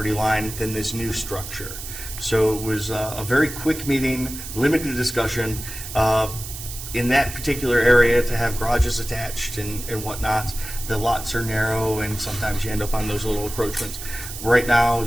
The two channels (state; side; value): noise; right; hiss, 10 dB below the sound